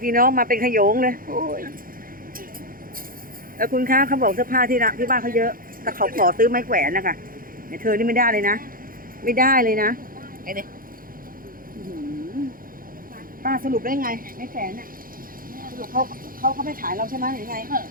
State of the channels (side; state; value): left; late; 0.41 ms